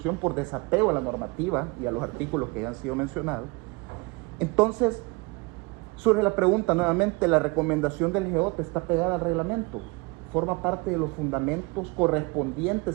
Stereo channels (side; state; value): left; quieter; 26.8 dB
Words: por desapego a la normativa y a los artículos que ya han sido mencionados. Entonces, surge la pregunta nuevamente, ¿la recomendación del GEOT está pegada al reglamento? ¿Forma parte de los fundamentos